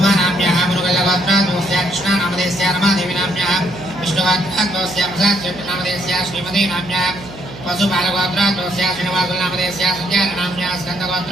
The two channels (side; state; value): right; noise; hum, 16 dB below the sound